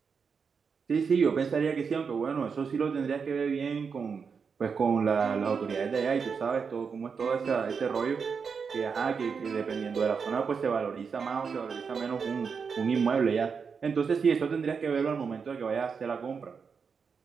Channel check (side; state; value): left; quieter; 5.8 dB